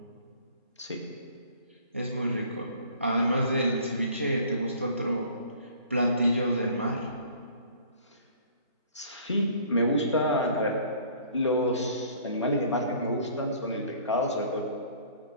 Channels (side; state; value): both; inverted; correlation -0.53